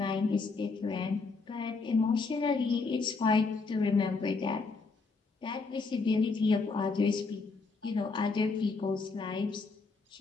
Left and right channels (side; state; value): right; quieter; 4.2 dB